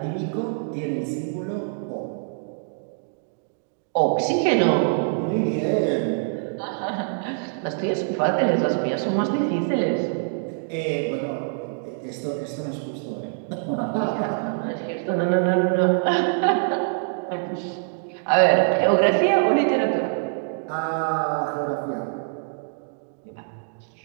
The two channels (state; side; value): silent; left; digital silence